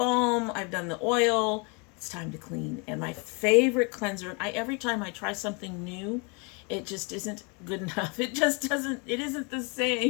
I've done the oil, it's time to clean. And my favorite cleanser, every time I try something new It just isn't good enough. It just doesn't, it isn't the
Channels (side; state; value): right; quieter; 32.7 dB